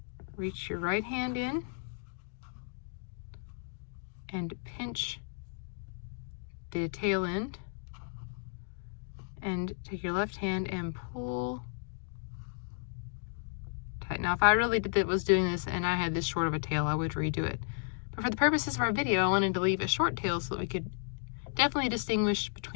Reach your right hand in and pinch the tail end, and take your left hand and pull tight. Now if I really was doing this and I had this short of a tail, I would redo it. But for the purposes of our video, I wanted to leave a short tail so that we could definitely distinguish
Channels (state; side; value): silent; right; digital silence